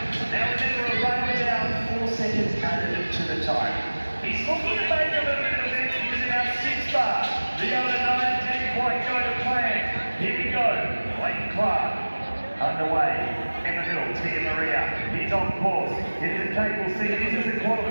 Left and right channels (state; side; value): inverted; both; correlation -1.00